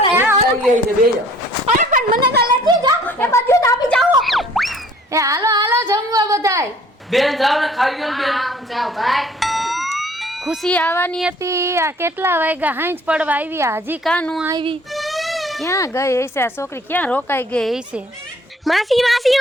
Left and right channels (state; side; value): normal; both; correlation 0.55